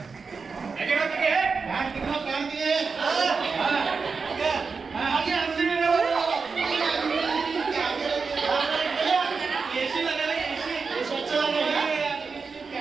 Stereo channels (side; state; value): left; quieter; 4.9 dB